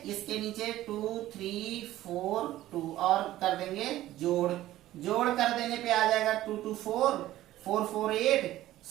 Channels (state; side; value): quieter; left; 14.7 dB